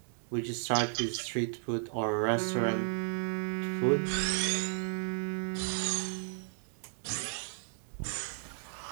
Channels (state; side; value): silent; left; digital silence